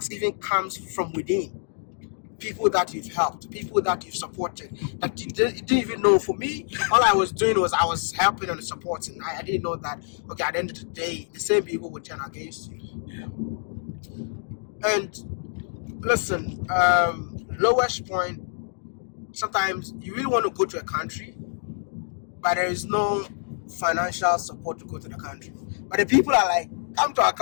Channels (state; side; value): silent; right; digital silence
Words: even comes from within. People that you've helped, people that you've supported, that you didn't even know. For me, all I was doing was I was helping and supporting. I didn't know that, okay, at the end of the day, the same people would turn against you. yeah, And listen, lowest point, sometimes you really want to go to a country, but there is no financial support to go to the country. But the people are like, come to our